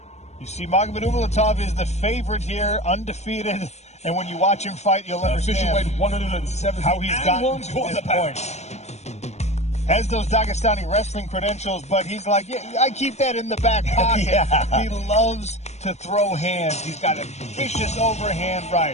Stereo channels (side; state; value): right; late; 0.32 ms